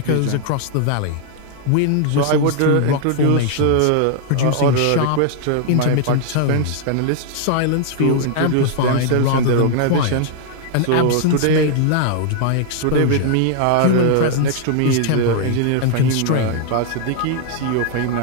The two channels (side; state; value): both; different; correlation 0.00